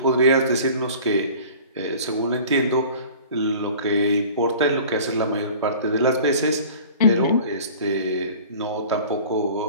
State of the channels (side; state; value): both; inverted; correlation -0.44